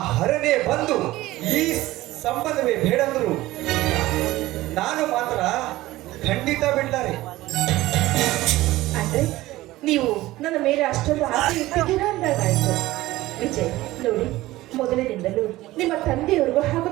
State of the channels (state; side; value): quieter; left; 17.3 dB